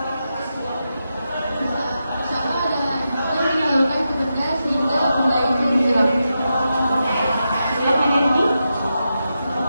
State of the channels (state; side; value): inverted; both; correlation -0.88